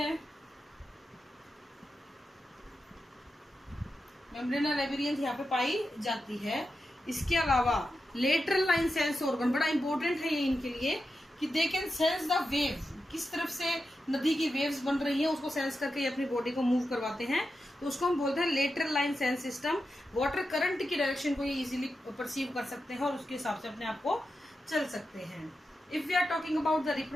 मेम्ब्रेना लैबिरियंथ यहाँ पे पाई जाती है। इसके अलावा लेटरल लाइन सेंस ऑर्गन बड़ा इंपॉर्टेंट है ये इनके लिए, कि they can sense the wave, किस तरफ से नदी की वेव्स बन रही है उसको सेंस करके ये अपनी बॉडी को मूव करवाते हैं, तो उसको हम बोलते हैं lateral line sense system. Water current की डायरेक्शन को ये इजीली परसीव कर सकते हैं और उसके हिसाब से अपने आप को चल सकते हैं। If we are talking about the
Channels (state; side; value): normal; both; correlation 0.89